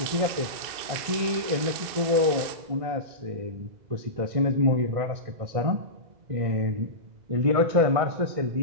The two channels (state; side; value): late; left; 2.0 ms